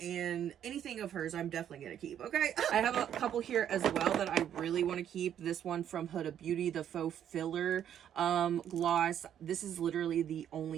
and anything of hers I'm definitely gonna keep. Okay, I have a couple here as well that I really want to keep. This one from Huda Beauty, the faux filler gloss. This is literally the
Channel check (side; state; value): left; quieter; 9.9 dB